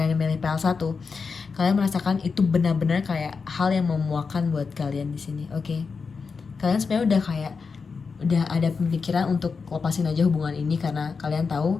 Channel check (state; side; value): quieter; right; 5.1 dB